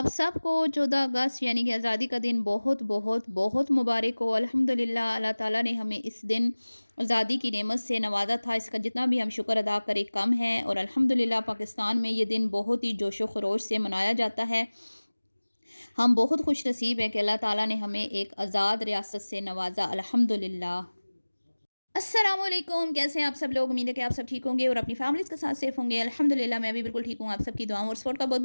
सबको 14 अगस्त यानी कि आज़ादी का दिन बहुत बहुत बहुत मुबारक हो। अल्हम्दुलिल्लाह अल्लाह ताला ने हमें इस दिन आज़ादी की नेमत से नवाजा था। इसका जितना भी हम शुक्र अदा करें कम है। और अल्हम्दुलिल्लाह पाकिस्तान में ये दिन बहुत ही जोशो खरोश से मनाया जाता है। हम बहुत खुश नसीब हैं कि अल्लाह ताला ने हमें एक आज़ाद रियासत से नवाजा, अल्हम्दुलिल्लाह। अस्सलाम वालेकुम, कैसे हैं आप सब लोग? उम्मीद है कि आप सब ठीक होंगे और अपनी फैमिलीज़ के साथ सेफ होंगे। अल्हम्दुलिल्लाह मैं भी बिल्कुल ठीक हूँ। आप सबकी दुआओं और सपोर्ट का बहुत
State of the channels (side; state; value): both; inverted; correlation -1.00